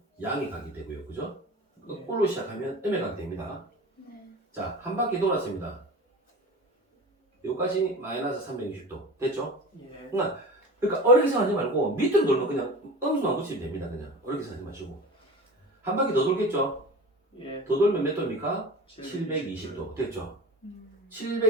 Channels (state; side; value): normal; both; correlation 0.35